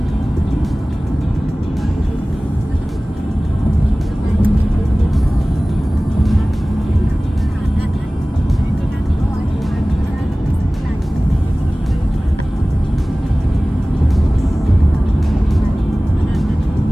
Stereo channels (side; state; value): both; normal; correlation 0.98